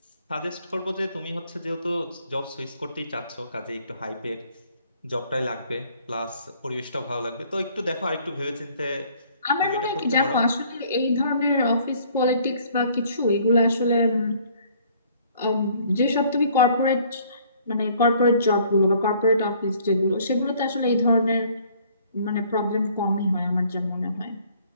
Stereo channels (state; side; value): inverted; both; correlation -0.59